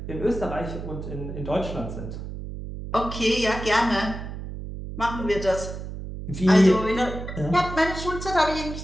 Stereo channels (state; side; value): noise; right; hum, 8 dB below the sound